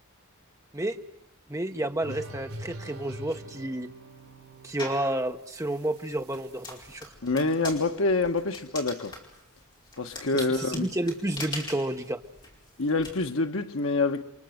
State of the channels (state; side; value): normal; both; correlation 0.28